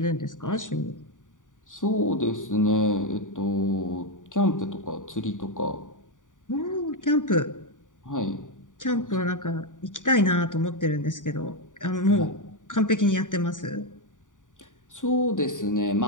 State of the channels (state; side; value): late; right; 0.87 ms